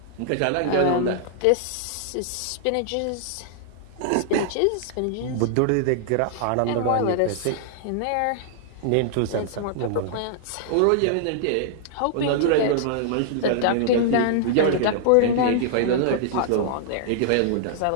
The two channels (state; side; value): different; both; correlation -0.01